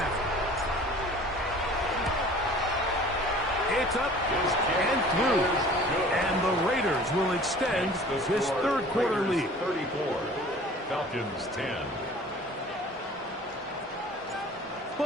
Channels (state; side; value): normal; both; correlation 0.47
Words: It's up and through. And the Raiders will extend this 3rd quarter lead. 34. Falcons 10.